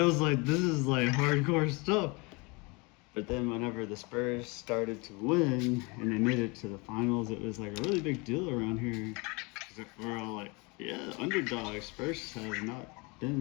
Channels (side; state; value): right; quieter; 28.1 dB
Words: was like, this is like hardcore stuff. But then whenever the Spurs started to win and they made it to the finals, it was like a really big deal around here. 'Cause we're all like, yeah, underdogs. Spurs have not